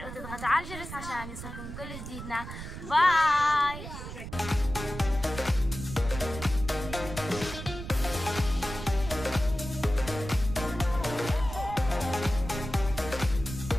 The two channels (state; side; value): noise; right; rumble, 10 dB below the sound